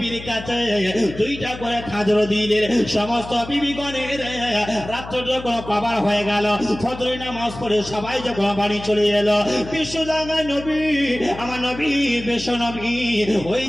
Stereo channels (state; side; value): noise; left; hum, 13 dB below the sound